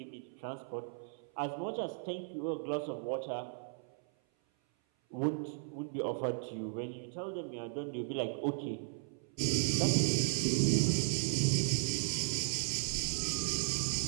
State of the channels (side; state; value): left; silent; 54 dB below the other